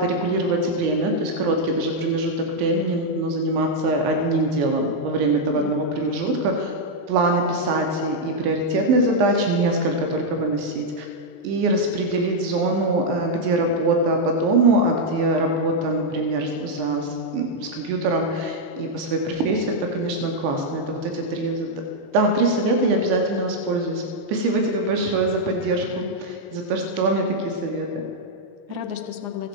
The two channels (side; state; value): left; late; 15 ms